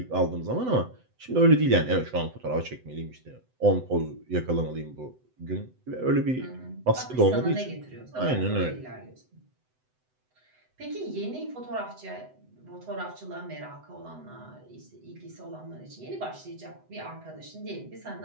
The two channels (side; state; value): left; late; 7.9 ms